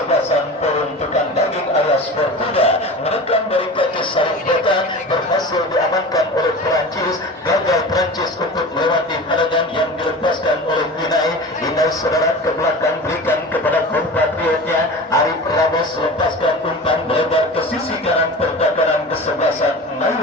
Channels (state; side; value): normal; both; correlation 0.34